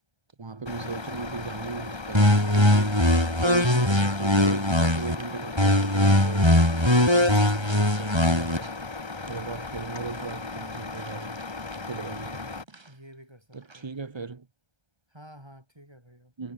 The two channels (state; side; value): late; left; 1.3 ms